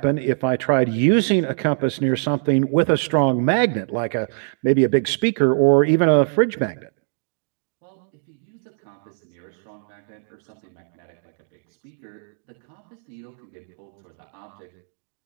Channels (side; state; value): left; silent; digital silence